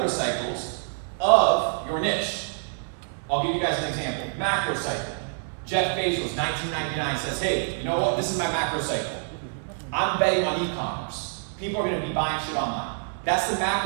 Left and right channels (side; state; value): left; silent; 61 dB below the other